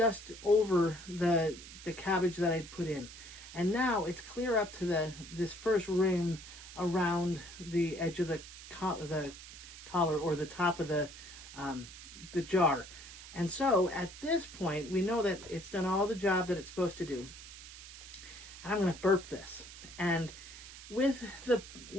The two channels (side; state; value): right; noise; hiss, 15 dB below the sound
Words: over the cabbage that I'd put in. And now it's clear up to this first rim around the edge of the collar or the top of the jar. And so at this point, we know that it's done all the job that it's supposed to do. And I'm going to burp this. And with